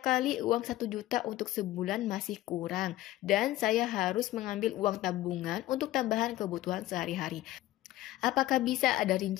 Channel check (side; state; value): right; quieter; 15.6 dB